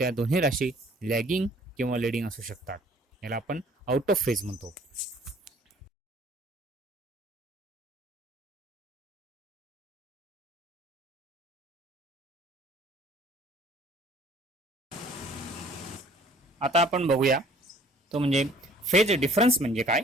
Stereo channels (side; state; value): both; normal; correlation 0.55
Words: दोन्ही राशी लॅगिंग किंवा लीडिंग असू शकतात. याला आपण आउट ऑफ फेज म्हणतो. आता आपण बघूया तो म्हणजे फेज डिफरन्स म्हणजे काय.